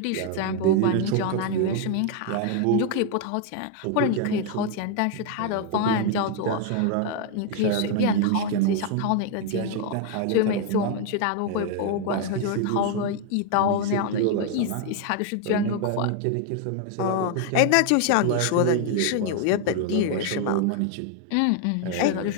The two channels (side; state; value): both; different; correlation 0.00